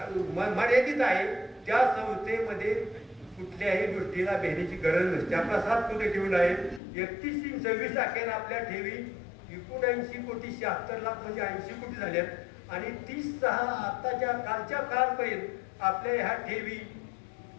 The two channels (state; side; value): drops out; right; at 6.8 s